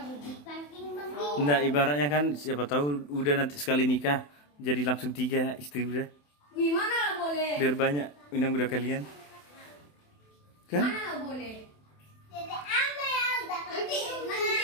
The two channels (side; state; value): right; late; 27 ms